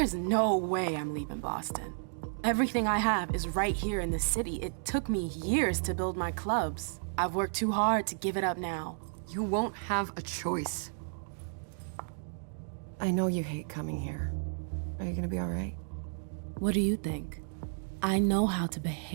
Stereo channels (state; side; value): silent; left; digital silence